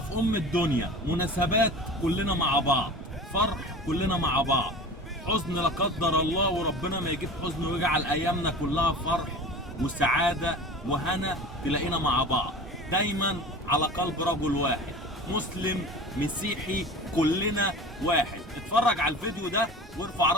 ام الدنيا. مناسبات كلنا مع بعض، فرح كلنا مع بعض، حزن لا قدر الله وربنا ما يجيب حزن ويجعل ايامنا كلها فرح وسعاده وهنا، تلاقينا مع بعض دايما على قلب رجل واحد، مسلم مسيحي كلنا واحد. اتفرج على الفيديو ده وارفع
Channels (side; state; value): both; normal; correlation 0.36